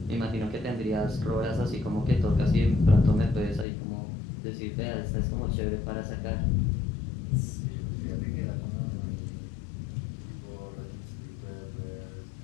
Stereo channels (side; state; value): right; drops out; at 3.7 s